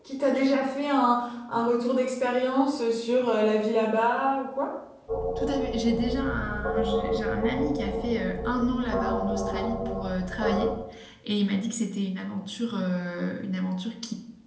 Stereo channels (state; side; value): identical; both; correlation 1.00